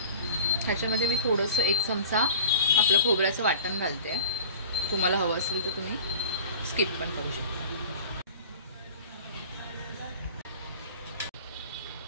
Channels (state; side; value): inverted; both; correlation -0.39